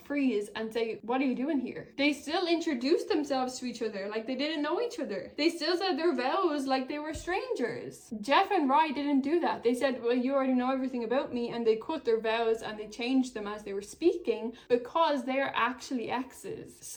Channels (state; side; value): identical; both; correlation 1.00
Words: freeze and say, what are you doing here? They still introduced themselves to each other like they didn't know each other. They still said their vows like they were strangers. Jeff and Rye didn't do that. They said, well, you already know everything about me, and they cut their vows and they changed them as they were speaking because they are actually exes.